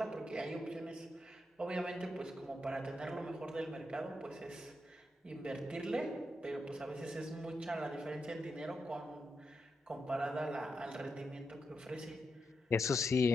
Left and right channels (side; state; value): both; normal; correlation 0.85